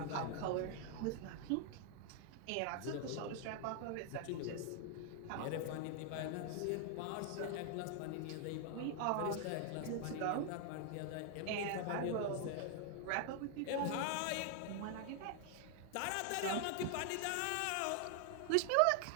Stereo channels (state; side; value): different; both; correlation 0.00